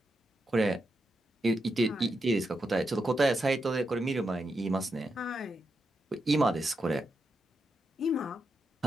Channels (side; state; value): both; normal; correlation 0.85